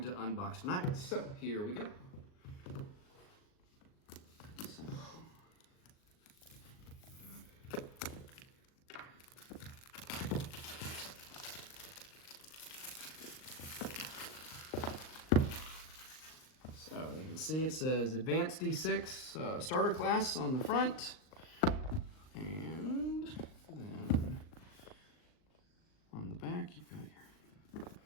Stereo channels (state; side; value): late; right; 38 ms